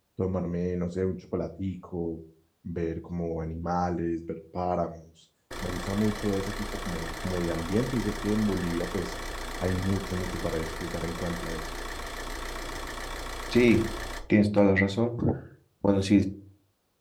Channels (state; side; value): identical; both; correlation 1.00